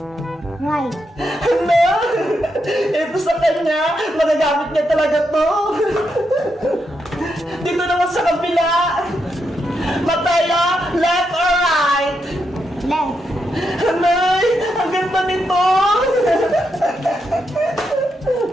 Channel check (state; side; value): normal; both; correlation 0.82